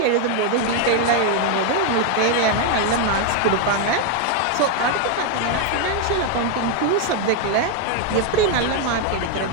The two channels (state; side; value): different; both; correlation 0.01